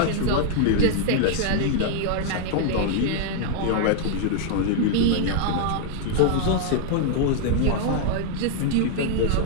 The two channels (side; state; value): both; different; correlation -0.01